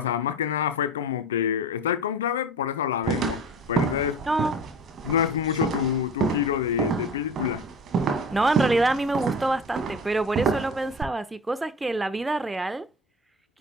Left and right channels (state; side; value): normal; both; correlation 0.35